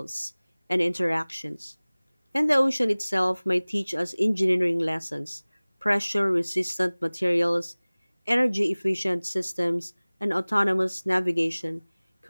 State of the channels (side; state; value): both; inverted; correlation -1.00